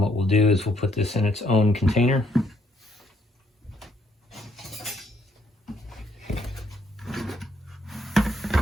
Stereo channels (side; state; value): both; normal; correlation 0.70